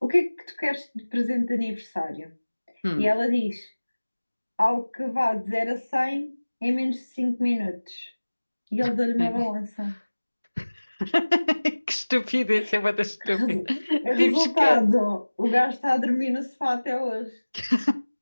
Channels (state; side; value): inverted; both; correlation -1.00